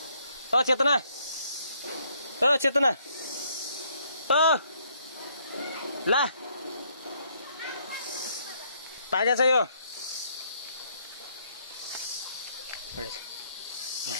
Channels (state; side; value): inverted; both; correlation -0.69